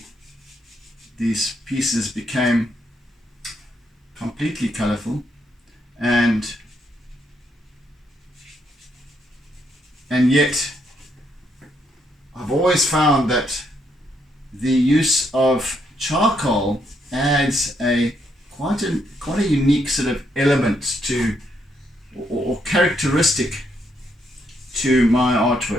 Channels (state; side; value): normal; both; correlation 0.76